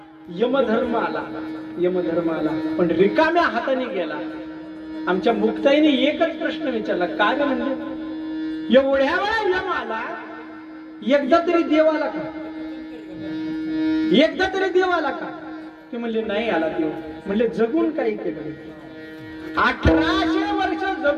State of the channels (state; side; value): identical; both; correlation 1.00